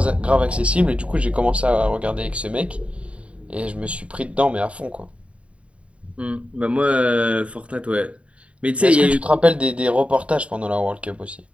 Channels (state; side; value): late; left; 0.062 ms